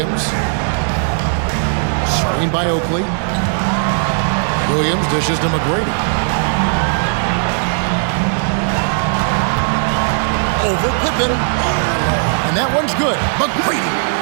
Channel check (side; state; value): left; silent; 68 dB below the other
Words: Screen by Oakley. Williams dishes to McGrady. over Pippen. And that one's good. McGrady.